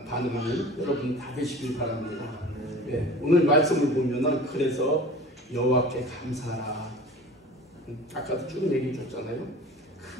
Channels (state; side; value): normal; both; correlation 0.40